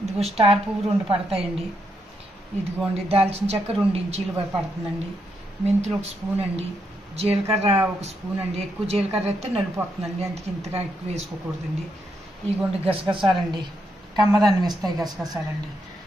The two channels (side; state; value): both; normal; correlation 0.80